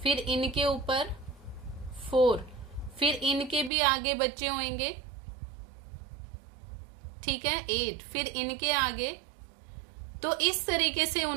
फिर इनके ऊपर 4, फिर इनके भी आगे बच्चे होंगे, ठीक है, 8, फिर इनके आगे। तो इस तरीके से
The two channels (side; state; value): left; drops out; at 3.7 s